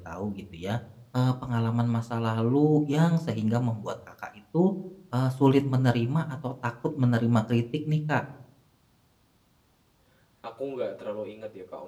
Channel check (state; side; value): identical; both; correlation 1.00